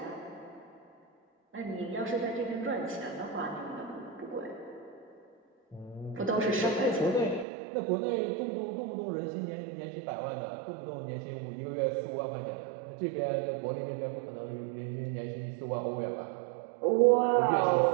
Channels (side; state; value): left; drops out; at 7.5 s